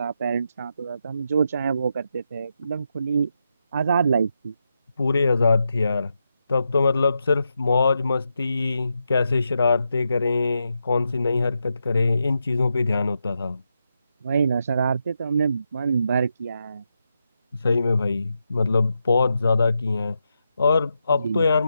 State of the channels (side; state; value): both; inverted; correlation -0.85